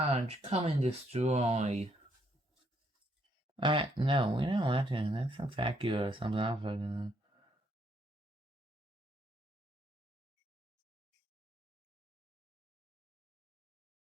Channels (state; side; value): normal; both; correlation 0.72